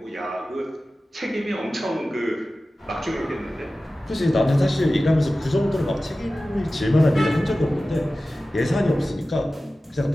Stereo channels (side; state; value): both; normal; correlation 0.96